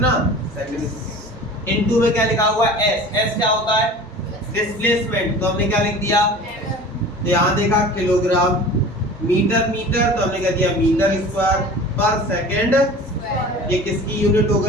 सेकंड। इनटू में क्या लिखा हुआ है, S क्या होता है, डिस्प्लेसमेंट, तो हमने क्या लिख दिया, तो यहाँ देखा किलोग्राम, मीटर मीटर, तो हमने क्या दिया मीटर स्क्वायर पर सेकंड। ये किसकी यूनिट हो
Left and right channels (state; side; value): normal; both; correlation 0.40